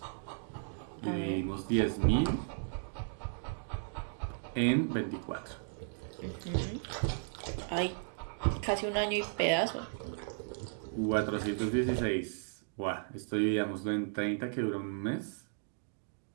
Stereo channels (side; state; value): left; silent; digital silence